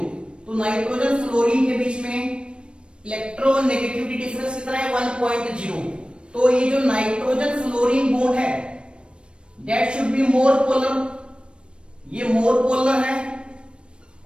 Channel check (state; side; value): late; left; 0.057 ms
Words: तो नाइट्रोजन फ्लोरीन के बीच में इलेक्ट्रोनेगेटिविटी डिफरेंस कितना है? 1.0। तो ये जो नाइट्रोजन फ्लोरीन बॉन्ड है that should be more polar, ये मोर पोलर है,